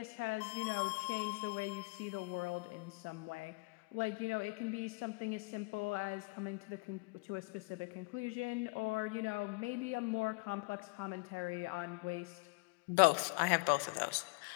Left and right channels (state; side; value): quieter; right; 29.6 dB